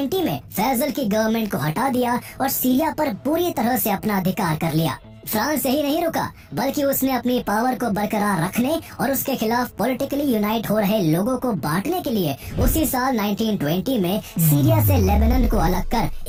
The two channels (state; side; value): identical; both; correlation 1.00